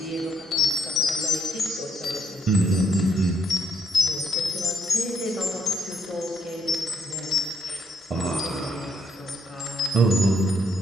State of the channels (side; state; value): both; normal; correlation 0.72